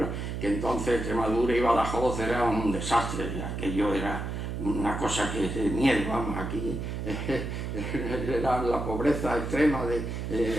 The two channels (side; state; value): right; noise; hum, 4 dB below the sound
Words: que entonces Extremadura y Badajoz era un desastre, aquello era una cosa que de miedo, vamos, aquí era la pobreza extrema